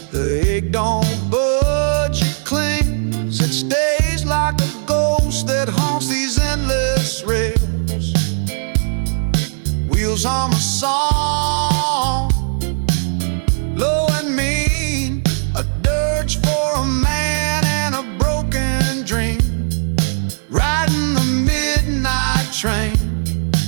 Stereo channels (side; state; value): left; silent; 65 dB below the other